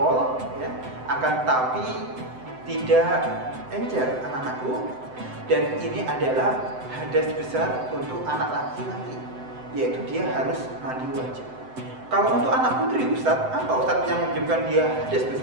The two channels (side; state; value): left; late; 7.8 ms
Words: ya, akan tapi tidak encer anak-anakku, dan ini adalah hadas besar untuk anak laki-laki, yaitu dia harus mandi wajib. Kalau untuk anak putri Ustadz, apa Ustadz yang menyebabkan dia hadas